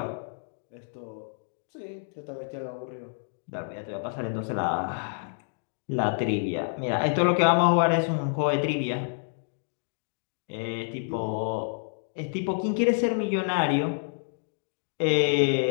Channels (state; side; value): silent; right; digital silence